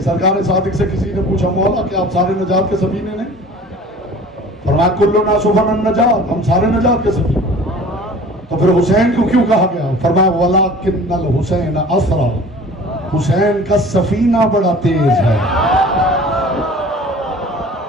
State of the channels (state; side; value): normal; both; correlation 0.45